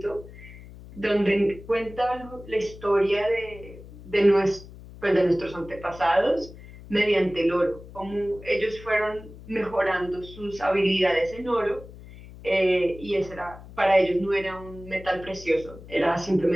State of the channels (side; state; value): left; noise; hum, 17 dB below the sound